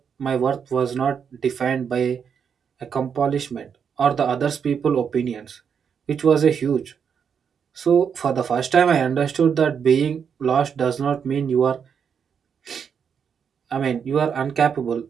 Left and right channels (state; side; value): quieter; left; 7.1 dB